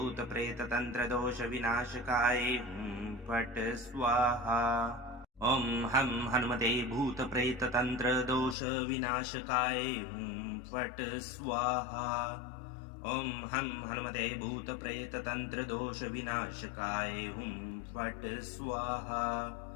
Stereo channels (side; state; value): right; drops out; at 8.6 s